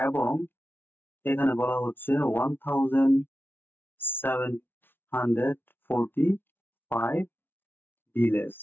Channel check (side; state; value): right; late; 0.10 ms